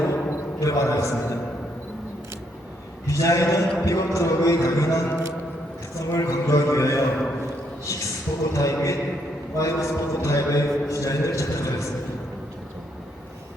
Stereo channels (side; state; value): both; normal; correlation 0.74